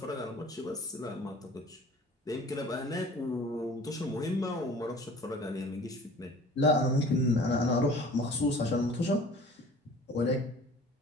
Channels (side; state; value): both; normal; correlation 0.46